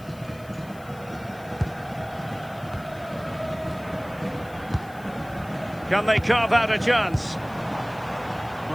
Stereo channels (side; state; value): left; noise; hiss, 24 dB below the sound